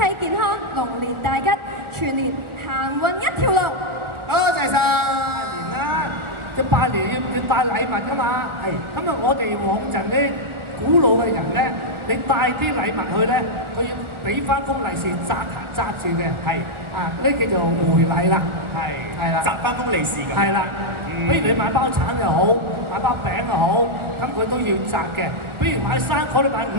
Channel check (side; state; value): left; late; 1.4 ms